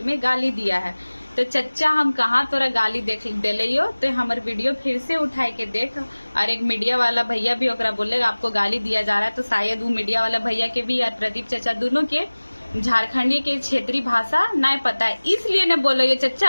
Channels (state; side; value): inverted; both; correlation -1.00